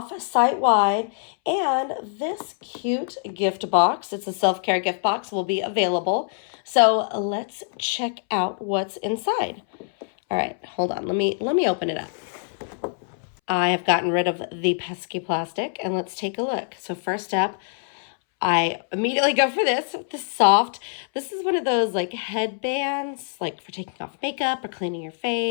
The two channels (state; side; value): silent; right; 62 dB below the other